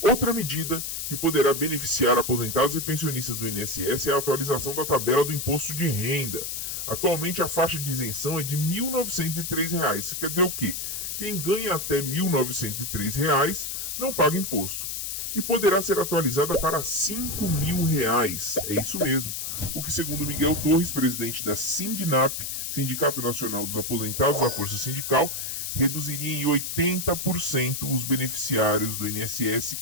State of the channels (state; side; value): noise; left; hiss, 4 dB below the sound